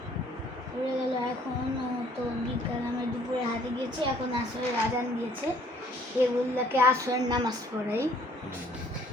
এখন তো বিকাল, আমরা দুপুরে হাতে গিয়েছি, এখন আসরের আজান দিয়েছে, এগুলোকে আসরের নামাজ পড়াই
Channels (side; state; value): both; normal; correlation 0.60